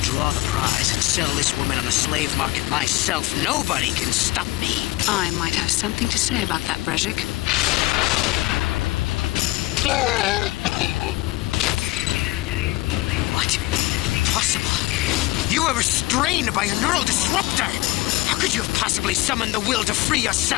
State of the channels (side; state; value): right; quieter; 19.4 dB